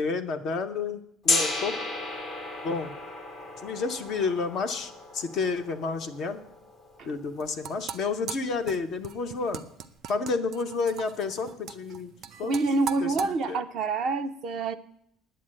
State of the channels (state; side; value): normal; both; correlation 0.53